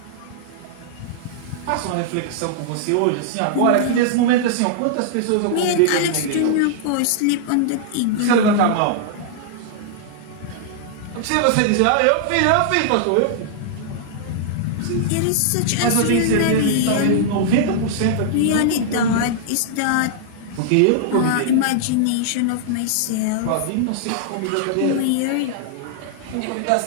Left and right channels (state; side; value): different; both; correlation -0.01